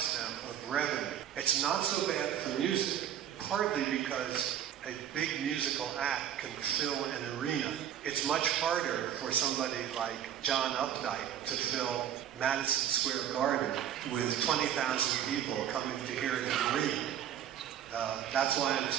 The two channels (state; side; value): quieter; left; 10.1 dB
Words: them of revenue. It's not so bad for music, partly because a big musical act can fill an arena. It's much harder for somebody like John Updike to fill Madison Square Garden with 20,000 people coming to hear him read. That's why I'm